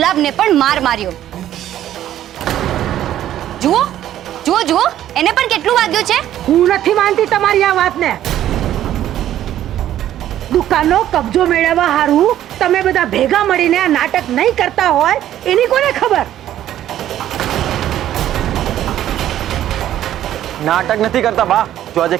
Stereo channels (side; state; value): left; quieter; 12.1 dB